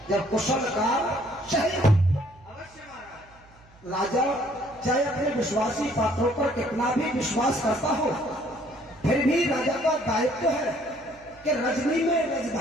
जब कुशल का सही। अवश्य महाराज। राजा चाहे अपने विश्वासी पात्रों पर कितना भी विश्वास करता हो, फिर भी राजा का दायित्व है कि रजनी में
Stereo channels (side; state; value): right; noise; hum, 27 dB below the sound